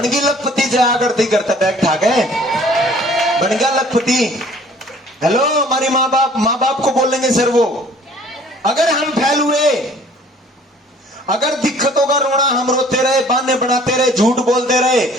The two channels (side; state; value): both; normal; correlation 0.54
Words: लखपति जया करती करता बैग ठाक है, बन गया लखपति। हेलो, हमारी माँ बाप को बोलेंगे सर वो। अगर हम फैल हुए, अगर दिक्कतों का रोना हम रोते रहे, बहाने बनाते रहे, झूठ बोलते रहे,